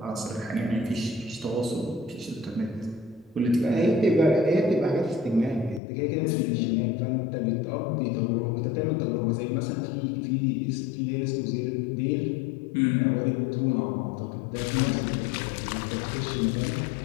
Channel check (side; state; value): right; drops out; at 5.8 s